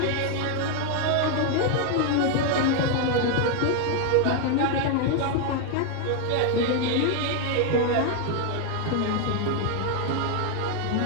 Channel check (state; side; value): different; both; correlation 0.01